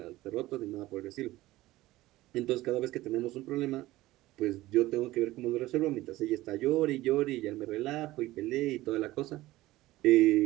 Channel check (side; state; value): left; quieter; 17.3 dB